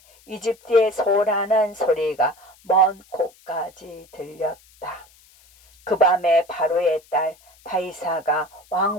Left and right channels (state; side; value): noise; left; hiss, 28 dB below the sound